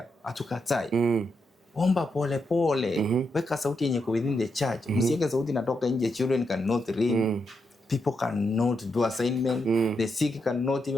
hatukatai. Omba pole pole. Weka sauti yenye kwa within the church. Msiweke sauti inatoka nje. Children cannot read. People cannot do assignment. The sick cannot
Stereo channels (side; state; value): both; normal; correlation 0.83